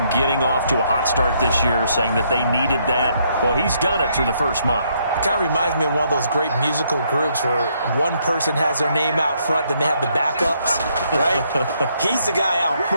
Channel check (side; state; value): both; inverted; correlation -0.72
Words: getting off to a hot start this year, saying that they needed that. Well, he's done it through the first month. It kind of reminds me of one of those great musical groups where one person has their name out front, then they have the backups, right? He's the guy out